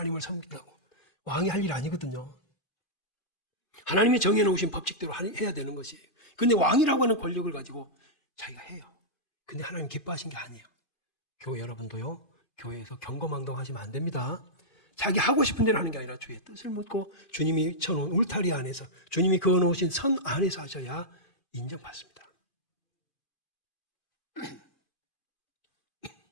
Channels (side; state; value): right; late; 2.5 ms